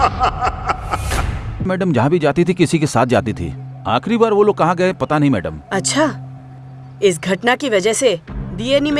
Madam जहाँ भी जाती थी किसी के साथ जाती थी। आखिरी बार वो लोग कहाँ गए पता नहीं मैडम। अच्छा, इस घटना की वजह से डीएनई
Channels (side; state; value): both; identical; correlation 1.00